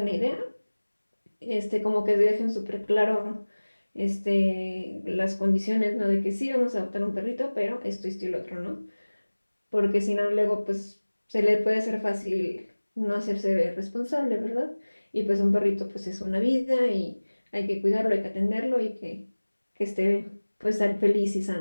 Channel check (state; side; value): inverted; both; correlation -1.00